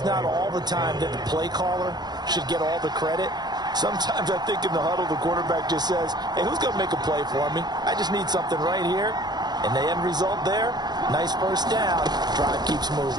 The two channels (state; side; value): late; left; 0.20 ms